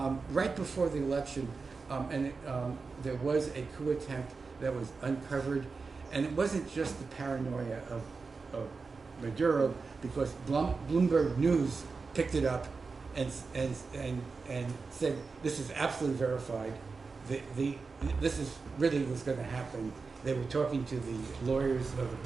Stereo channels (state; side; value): quieter; left; 4.5 dB